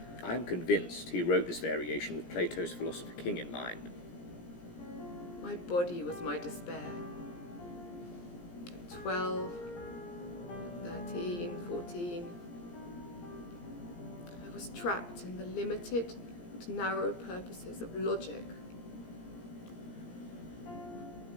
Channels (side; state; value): right; late; 17 ms